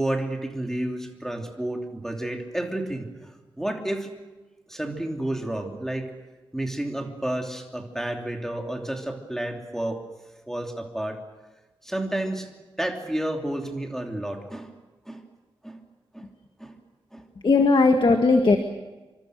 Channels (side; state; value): both; normal; correlation 0.82